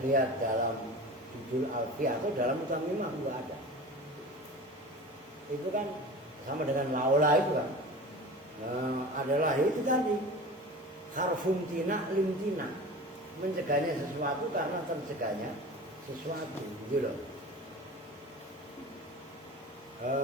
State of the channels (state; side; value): normal; both; correlation 0.35